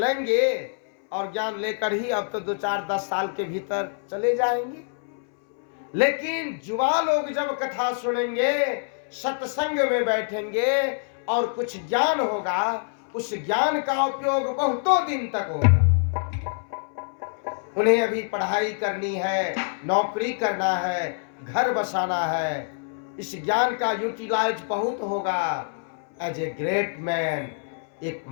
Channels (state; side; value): silent; right; 61 dB below the other